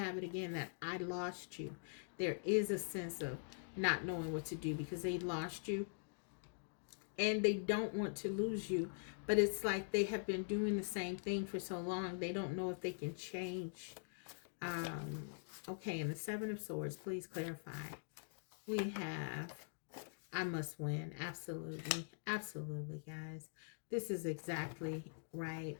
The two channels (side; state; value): right; silent; digital silence